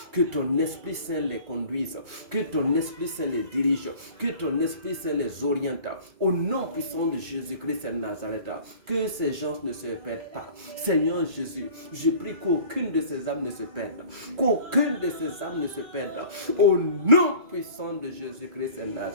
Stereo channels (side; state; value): left; late; 2.3 ms